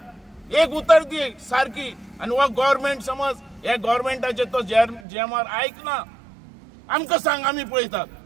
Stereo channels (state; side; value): drops out; left; at 5.1 s